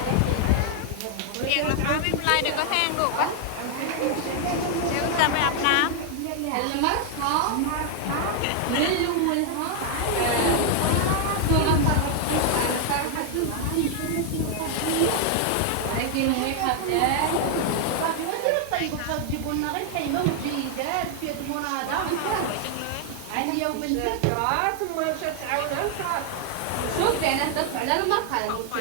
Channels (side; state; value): both; different; correlation 0.00